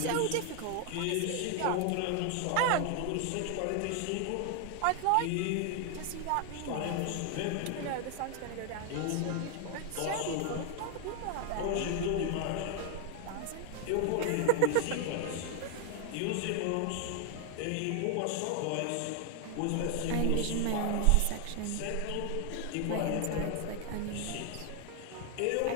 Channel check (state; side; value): different; both; correlation 0.00